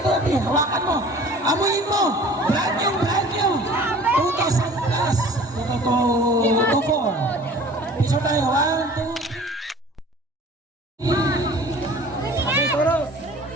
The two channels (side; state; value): both; normal; correlation 0.46